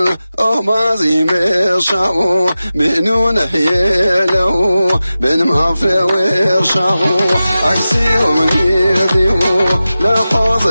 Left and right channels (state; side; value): inverted; both; correlation -0.94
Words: ما زي مشاو منو نحيلو بن ما في وشاو عكسي ومنيديو لا